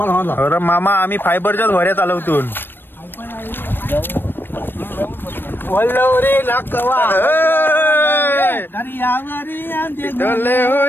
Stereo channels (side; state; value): right; late; 0.097 ms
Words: अरे मामा आम्ही फायबरच्याच भऱ्या चालवतून.